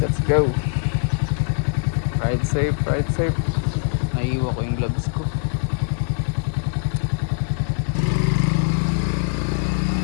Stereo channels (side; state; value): right; silent; digital silence